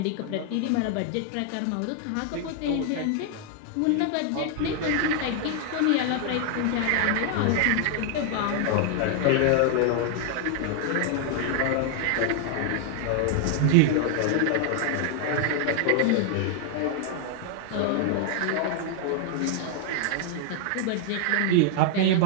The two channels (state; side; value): different; both; correlation 0.00